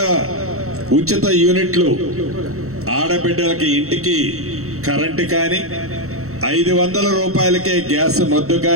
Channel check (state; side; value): late; left; 0.64 ms